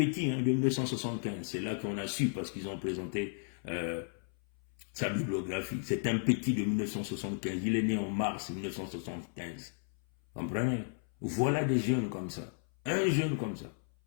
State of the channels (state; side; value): silent; right; 55 dB below the other